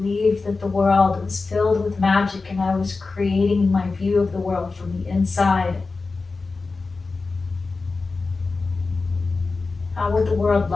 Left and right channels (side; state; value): right; quieter; 4.0 dB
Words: that the world was filled with magic and I was creating my view of the world from the inside. How would the world